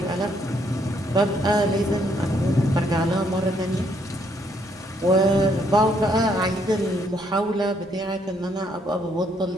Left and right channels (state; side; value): normal; both; correlation 0.71